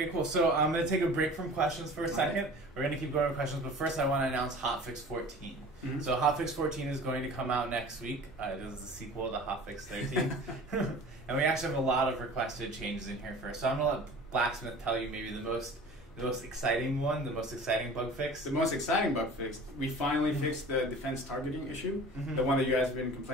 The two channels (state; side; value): normal; both; correlation 0.42